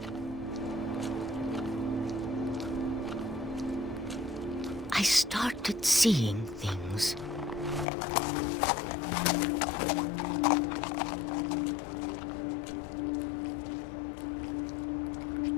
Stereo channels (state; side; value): drops out; right; at 7.9 s